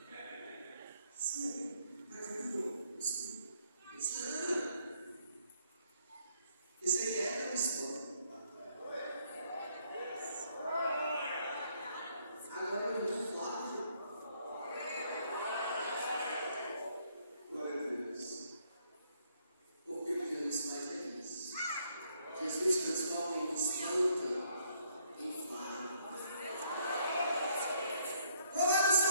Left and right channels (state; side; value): inverted; both; correlation -0.69